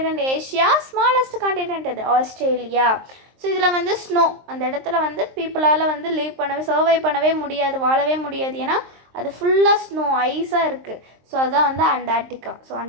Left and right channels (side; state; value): left; late; 23 ms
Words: Asia, smallest continent எது, ஆஸ்திரேலியா. ஸோ இதில் வந்து ஸ்னோ, அந்த இடத்துல வந்து பீப்புளால் வந்து லீவ் பண்ணவே, சர்வை பண்ணவே முடியாது, வாழவே முடியாது, ஏன்னா அது ஃபுல்லாக ஸ்னோ, ஐஸாக இருக்குது. ஸோ அதுதான் வந்து அண்டார்டிகா. ஸோ